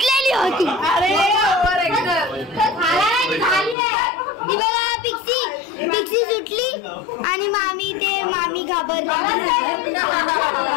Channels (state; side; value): drops out; right; at 3.8 s